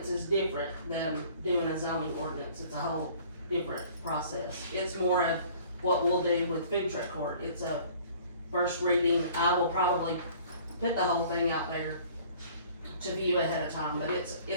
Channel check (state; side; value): inverted; both; correlation -0.52